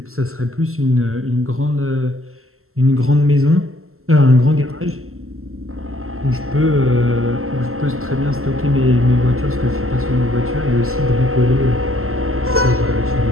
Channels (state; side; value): late; left; 0.62 ms